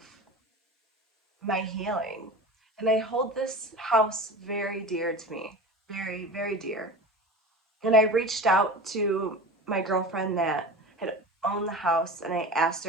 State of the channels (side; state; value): both; normal; correlation 0.32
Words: my healing. And I hold this house very dear to me, very, very dear. And I reached out to my girlfriend that had owned the house and I asked